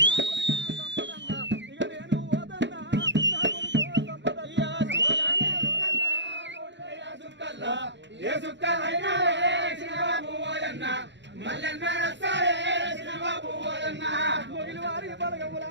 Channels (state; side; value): late; left; 0.52 ms